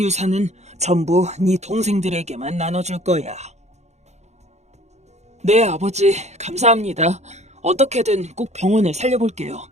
전부 네 동생들에게만 나눠줄 거야. 네, 아버지, 감사합니다. 어떻게든 꼭 병원을 살려볼게요.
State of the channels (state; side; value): late; left; 0.33 ms